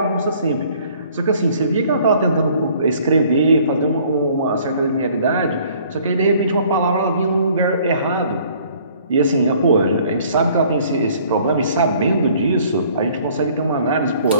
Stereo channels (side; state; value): both; inverted; correlation -0.57